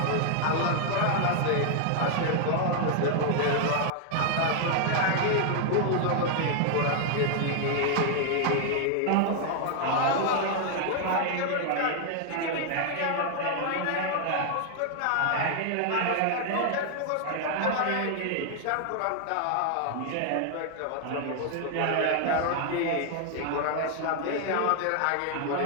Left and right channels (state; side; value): different; both; correlation 0.00